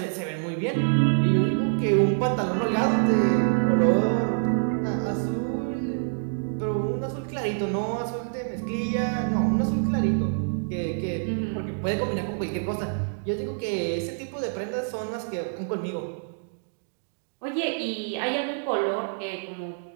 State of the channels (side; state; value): left; silent; digital silence